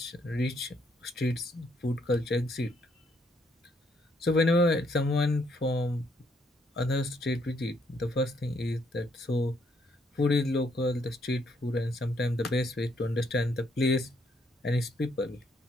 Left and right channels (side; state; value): both; normal; correlation 0.71